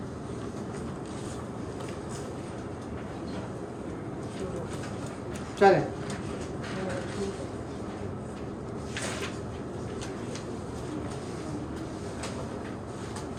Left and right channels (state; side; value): identical; both; correlation 1.00